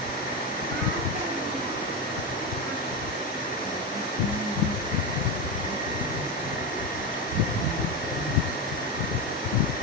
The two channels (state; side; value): normal; both; correlation 0.15